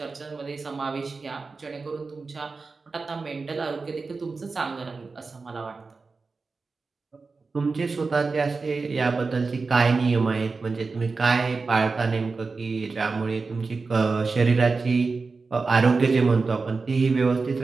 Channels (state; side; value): quieter; left; 4.2 dB